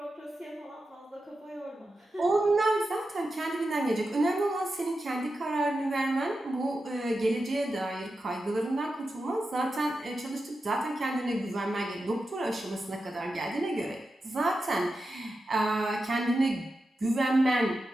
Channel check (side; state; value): both; normal; correlation 0.90